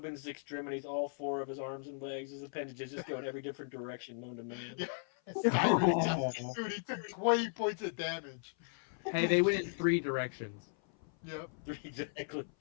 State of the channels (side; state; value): right; silent; 53 dB below the other